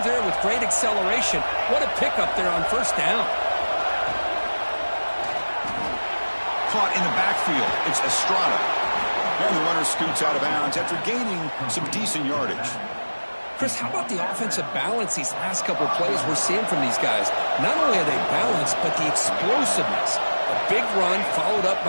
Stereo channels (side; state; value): both; inverted; correlation -1.00